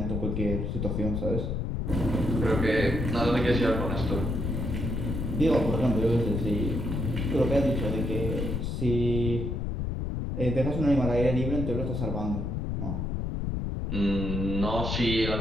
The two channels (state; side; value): noise; left; rumble, 1 dB below the sound